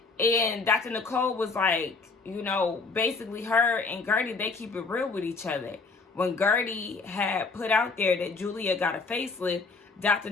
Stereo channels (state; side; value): quieter; right; 4.2 dB